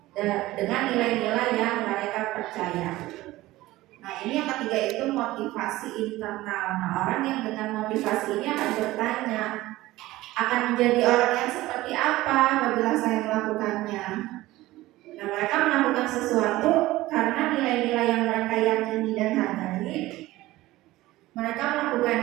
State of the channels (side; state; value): left; quieter; 17.5 dB